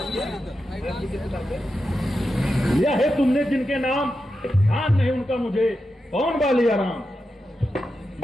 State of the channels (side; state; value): both; normal; correlation 0.89